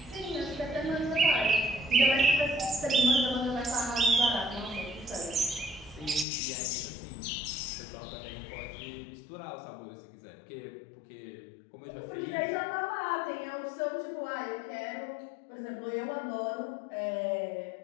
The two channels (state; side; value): drops out; right; at 6.2 s